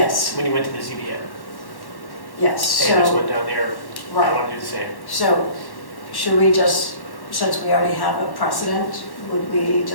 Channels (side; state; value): right; late; 1.1 ms